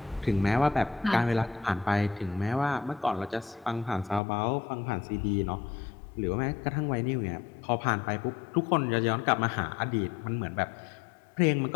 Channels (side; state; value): right; drops out; at 4.2 s